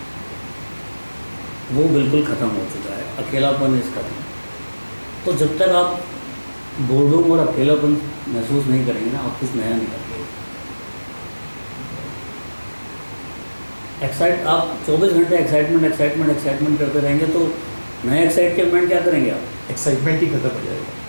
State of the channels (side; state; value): both; inverted; correlation -1.00